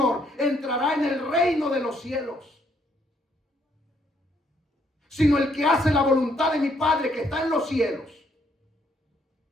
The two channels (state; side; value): normal; both; correlation 0.70